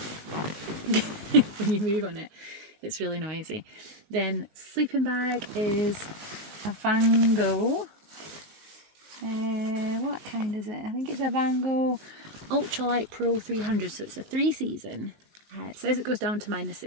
when you move on it, it's really noisy. Then sleeping bag is a Van Gogh, what kind is it? I think it's a Van Gogh Ultralight Pro 300, so it's a 3-season. It says it goes down to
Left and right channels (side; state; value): left; late; 19 ms